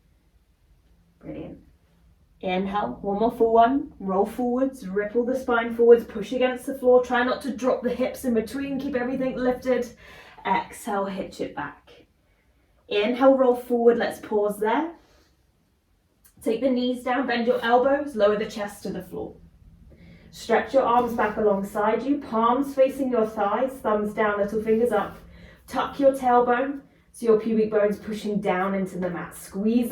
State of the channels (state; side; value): identical; both; correlation 1.00